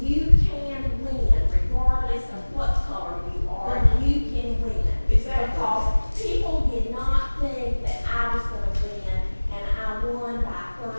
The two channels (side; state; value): both; inverted; correlation -1.00